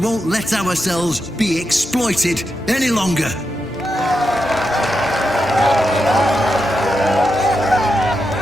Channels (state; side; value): normal; both; correlation 0.86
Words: let ourselves be exploited any longer.